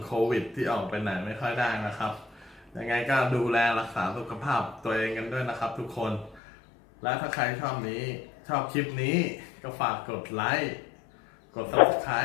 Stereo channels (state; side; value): drops out; right; at 6.4 s